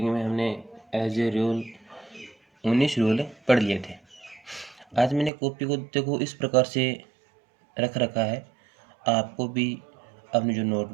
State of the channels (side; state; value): left; drops out; at 5.3 s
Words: में हमने एज ए रूल 19 रूल पढ़ लिए थे। आज मैंने कॉपी को देखो इस प्रकार से रख रखा है, आपको भी अपनी जो